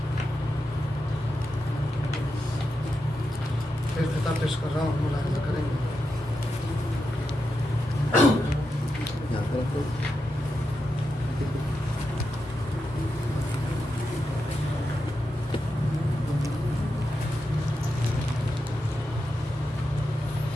फिर किताब पेश कर रहा हूँ, मुलाहिजा करेंगे।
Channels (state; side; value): normal; both; correlation 0.87